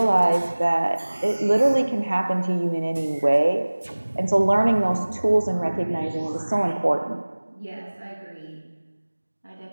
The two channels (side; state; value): both; inverted; correlation -1.00